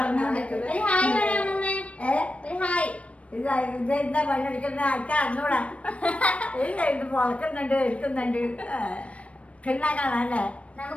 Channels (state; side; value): late; right; 0.063 ms